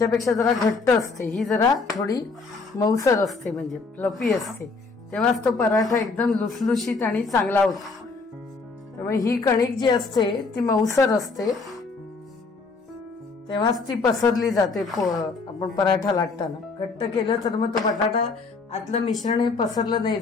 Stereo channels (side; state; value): right; quieter; 4.1 dB